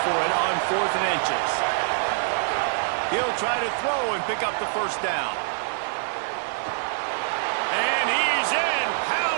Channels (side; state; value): left; silent; digital silence